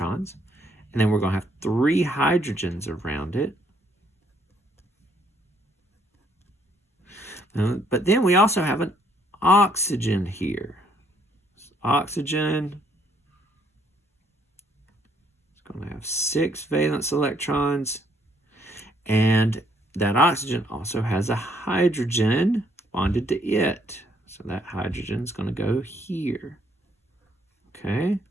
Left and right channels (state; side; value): normal; both; correlation 0.68